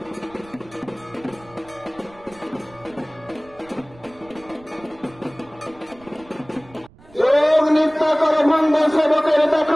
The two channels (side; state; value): right; noise; rumble, 25 dB below the sound